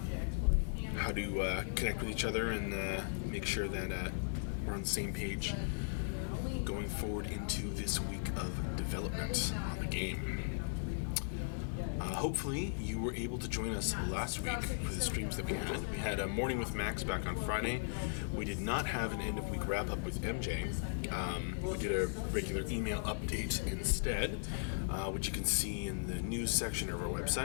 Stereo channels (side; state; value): right; silent; digital silence